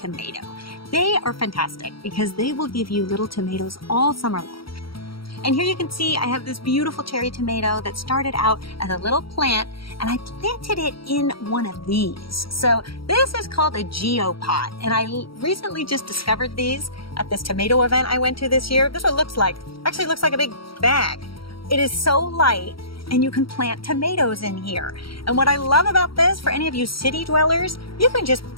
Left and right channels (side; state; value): right; late; 0.74 ms